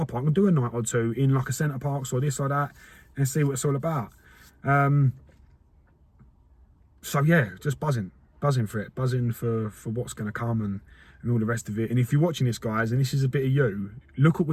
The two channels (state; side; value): identical; both; correlation 1.00